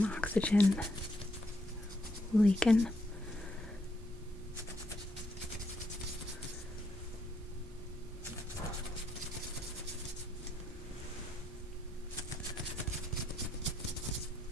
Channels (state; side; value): normal; both; correlation 0.76